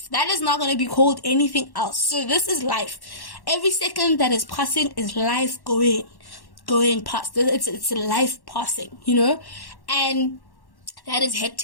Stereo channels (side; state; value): right; late; 1.1 ms